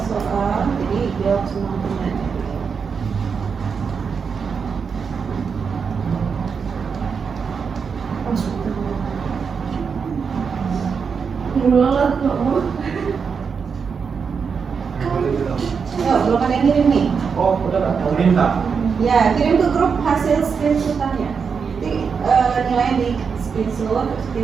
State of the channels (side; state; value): left; quieter; 5.9 dB